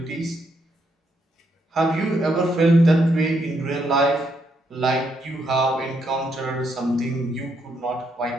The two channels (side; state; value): both; normal; correlation 0.76